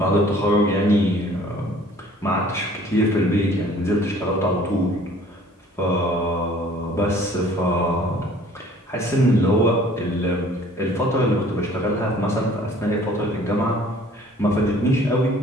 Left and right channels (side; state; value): both; normal; correlation 0.53